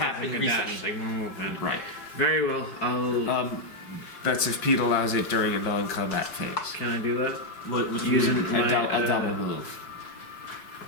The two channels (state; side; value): late; right; 4.7 ms